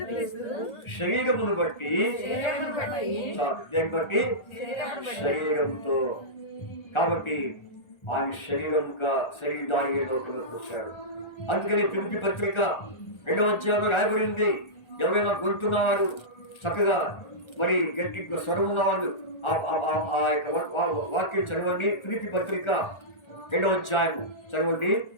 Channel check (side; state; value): right; late; 1.4 ms